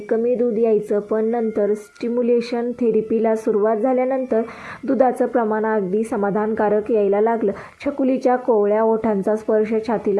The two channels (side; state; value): both; identical; correlation 1.00